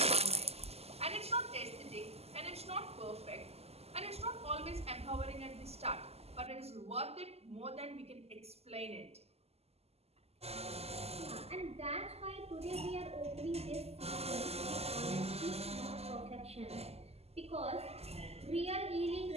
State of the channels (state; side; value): late; left; 0.29 ms